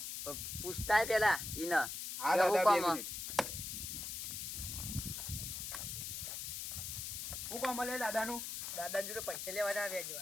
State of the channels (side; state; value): left; noise; hiss, 5 dB below the sound